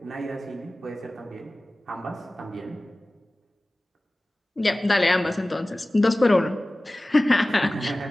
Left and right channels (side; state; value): both; normal; correlation 0.97